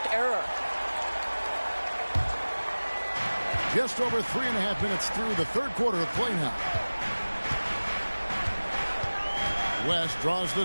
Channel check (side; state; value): both; inverted; correlation -1.00